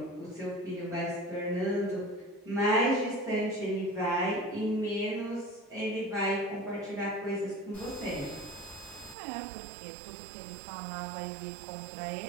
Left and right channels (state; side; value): drops out; left; at 9.2 s